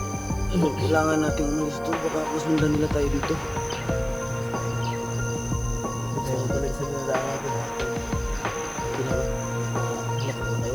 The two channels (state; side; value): noise; left; hiss, 24 dB below the sound